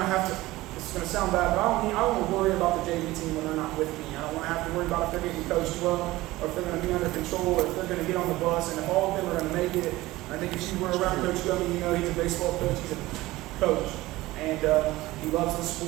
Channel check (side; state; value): left; quieter; 18.3 dB